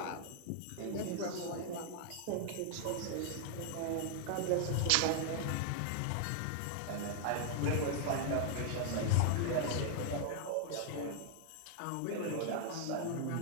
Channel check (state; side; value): different; both; correlation 0.00